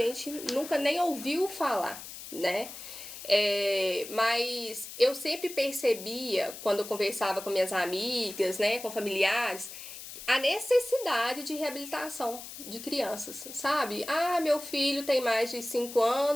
nunca nem ouviu falar, né? Mas eu sempre percebia, quando eu conversava com minhas amigas, né, com familiares, a necessidade de reabilitação de crianças, sabe? Ah, meu filho tem mais de 5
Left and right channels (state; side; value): noise; left; hiss, 12 dB below the sound